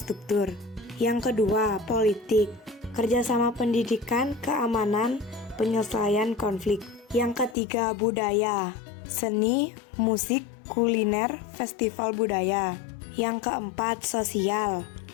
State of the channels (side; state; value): right; drops out; at 7.6 s